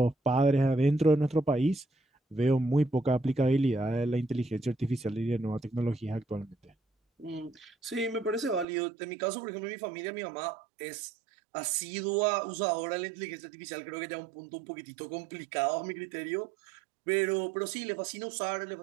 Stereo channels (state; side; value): drops out; left; at 8.7 s